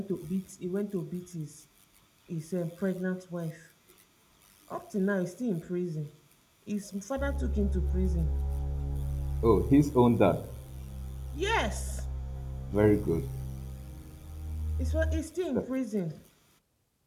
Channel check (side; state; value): both; identical; correlation 1.00